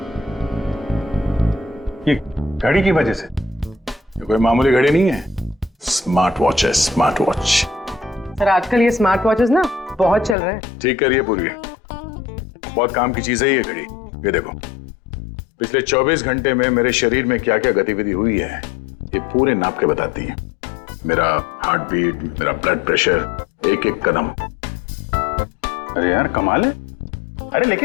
ये घड़ी की वजह से। ये कोई मामूली घड़ी नहीं है, स्मार्ट वॉच है, स्मार्ट वॉच। सर आजकल ये स्मार्ट वॉचेस ना बहुत चल रहे हैं। ठीक करिए पूरी, बहुत काम की चीज है ये घड़ी। ये देखो, पिछले 24 घंटे में मेरे शरीर में क्या क्या गतिविधि हुई है ये पूरे नाप के बताती है। मेरा हार्ट बीट, मेरा ब्लड प्रेशर, एक एक कदम। अरे यार कमाल है। अरे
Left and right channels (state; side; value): drops out; right; at 10.4 s